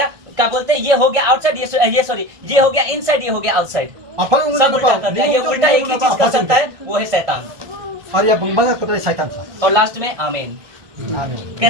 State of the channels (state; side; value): late; left; 1.6 ms